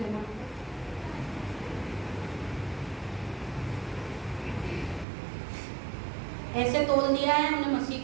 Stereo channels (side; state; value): left; drops out; at 5.1 s